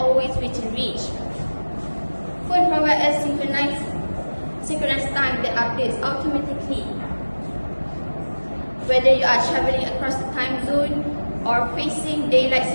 within reach. Phone provides us synchronized time that updates automatically. Whether you are traveling across the time zone or facing daylight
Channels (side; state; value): both; inverted; correlation -1.00